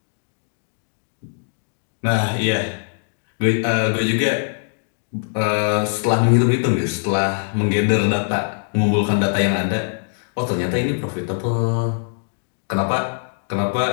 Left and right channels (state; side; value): silent; right; digital silence